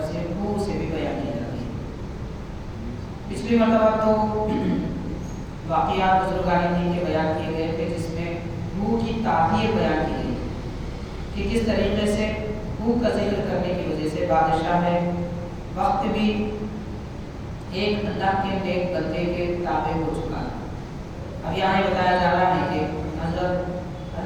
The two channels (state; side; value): identical; both; correlation 1.00